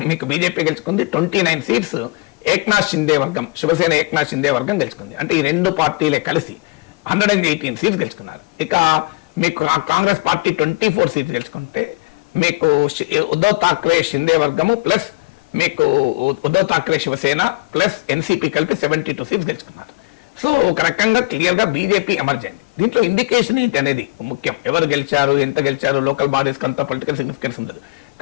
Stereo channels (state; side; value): quieter; right; 26.2 dB